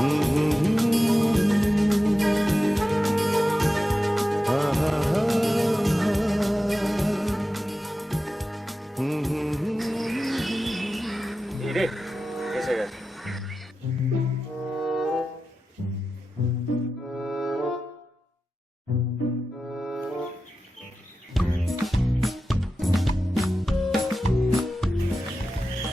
রে এসে গেছে।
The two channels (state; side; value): normal; both; correlation 0.93